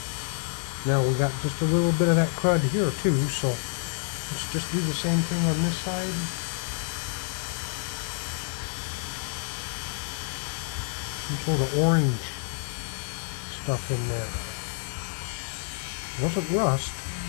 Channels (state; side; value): silent; right; digital silence